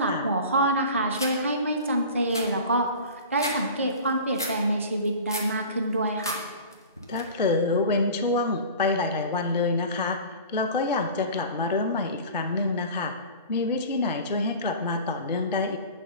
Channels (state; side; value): inverted; both; correlation -0.38